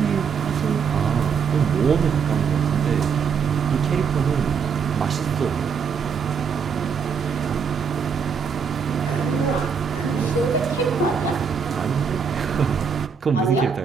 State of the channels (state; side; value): quieter; left; 6.3 dB